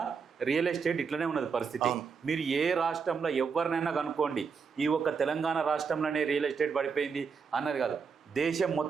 రియల్ ఎస్టేట్ ఇట్లనే ఉన్నది పరిస్థితి. మీరు ఏ రాష్ట్రంలో ఎవరినైనా కనుక్కోండి, ఈ ఒక్క తెలంగాణ రాష్ట్రంలోనే రియల్ ఎస్టేట్ పడిపోయింది అన్నది కాదు. దేశం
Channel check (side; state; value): left; quieter; 5.7 dB